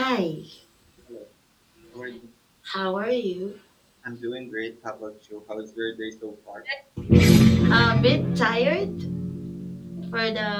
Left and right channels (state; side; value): identical; both; correlation 1.00